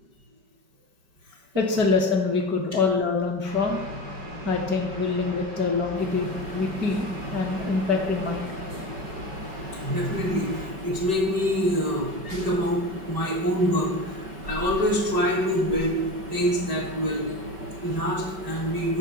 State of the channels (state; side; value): late; left; 5.2 ms